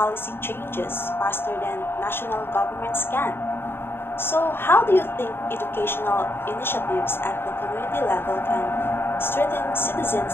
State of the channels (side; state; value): right; late; 0.11 ms